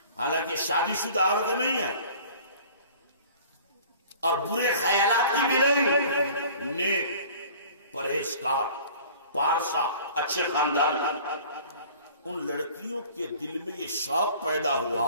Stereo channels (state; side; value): inverted; both; correlation -0.47